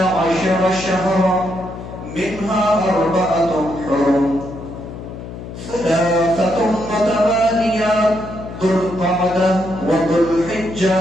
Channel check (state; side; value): noise; left; hum, 11 dB below the sound